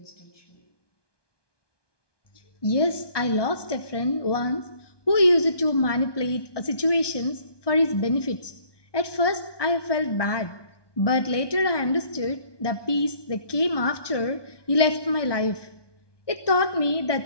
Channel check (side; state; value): right; late; 1.2 ms